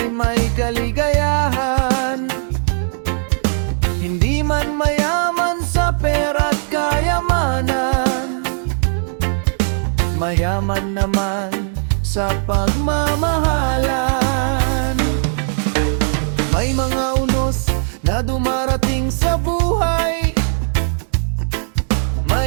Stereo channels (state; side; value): silent; left; digital silence